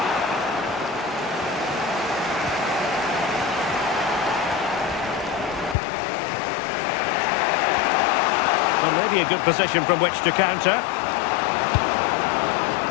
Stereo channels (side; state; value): right; drops out; at 5.8 s